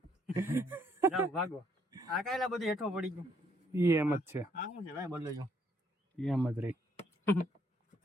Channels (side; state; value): both; normal; correlation 0.69